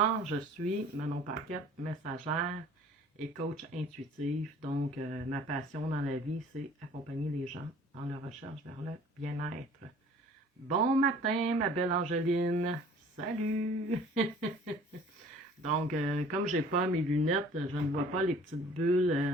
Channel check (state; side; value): normal; both; correlation 0.50